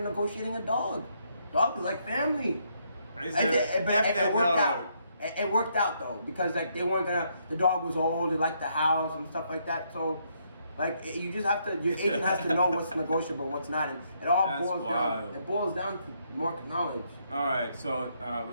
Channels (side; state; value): both; inverted; correlation -0.73